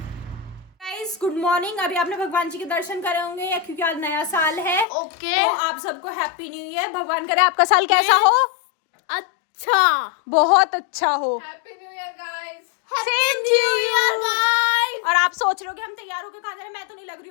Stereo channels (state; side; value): drops out; right; at 4.9 s